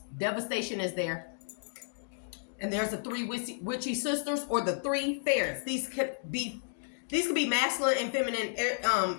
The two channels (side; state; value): right; silent; digital silence